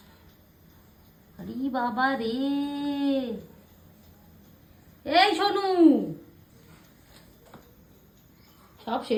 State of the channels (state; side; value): identical; both; correlation 1.00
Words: আরে বাবা রে, এই সোনু, সব